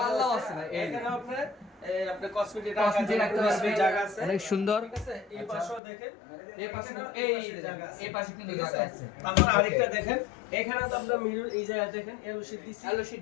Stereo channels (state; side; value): drops out; right; at 5.8 s